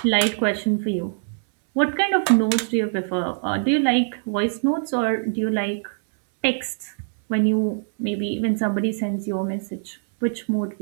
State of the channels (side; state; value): left; silent; 63 dB below the other